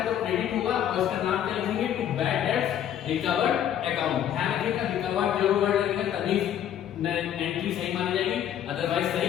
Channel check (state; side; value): quieter; right; 10.3 dB